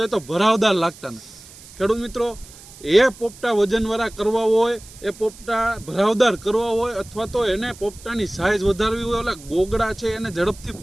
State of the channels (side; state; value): right; noise; hiss, 20 dB below the sound